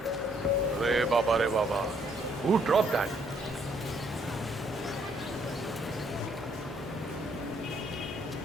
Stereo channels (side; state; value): both; normal; correlation 0.68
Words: Re Baba. Who dropped that?